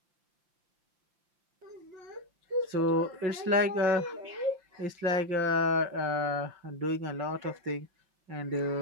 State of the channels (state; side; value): late; left; 5.8 ms